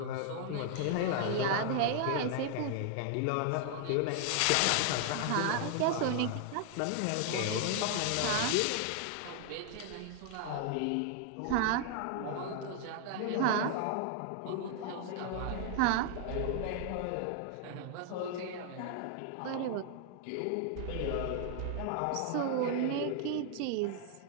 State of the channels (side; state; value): both; different; correlation 0.00